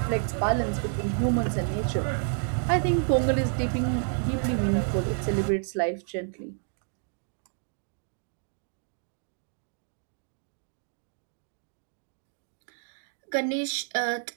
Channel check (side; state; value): left; silent; 58 dB below the other